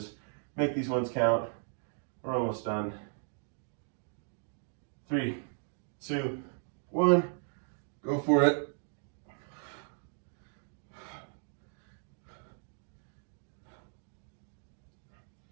Make these ones count. We're almost done. 3, 2, 1. Go for it.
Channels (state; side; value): silent; left; 54 dB below the other